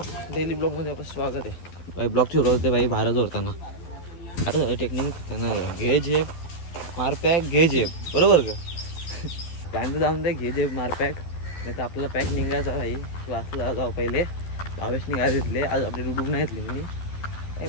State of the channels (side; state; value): right; late; 12 ms